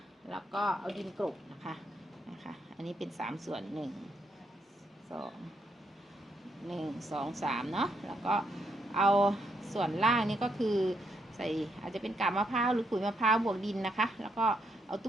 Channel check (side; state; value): both; normal; correlation 0.76